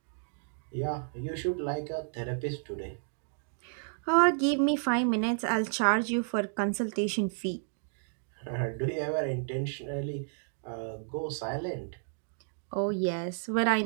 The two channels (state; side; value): silent; left; digital silence